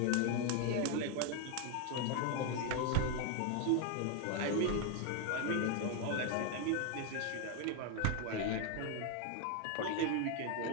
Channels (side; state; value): both; different; correlation 0.01